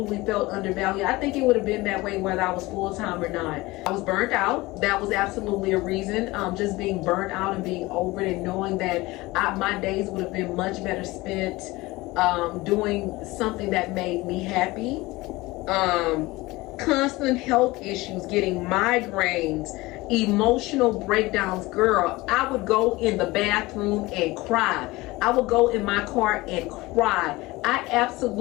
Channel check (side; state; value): right; quieter; 20.8 dB